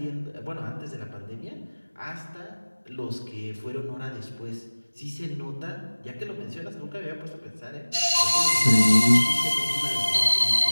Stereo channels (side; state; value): both; inverted; correlation -1.00